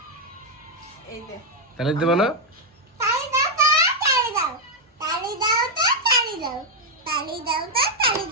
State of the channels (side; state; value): both; normal; correlation 0.01